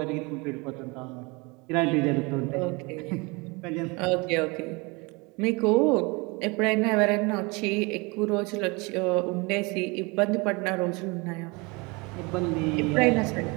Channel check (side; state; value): left; quieter; 27.2 dB